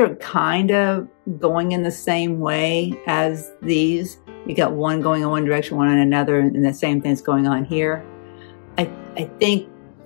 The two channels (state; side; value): silent; right; digital silence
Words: kind of going in the same way as these. You got one going in one direction, one in another, and the same thing's going on here. I think